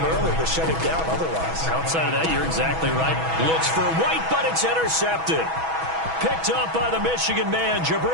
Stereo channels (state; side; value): late; left; 6.2 ms